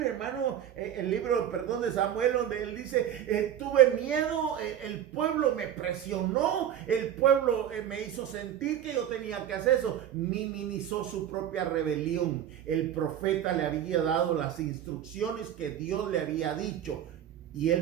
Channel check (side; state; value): left; quieter; 10.4 dB